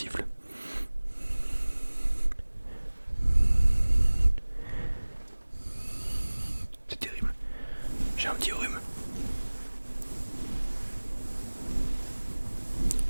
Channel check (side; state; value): both; inverted; correlation -1.00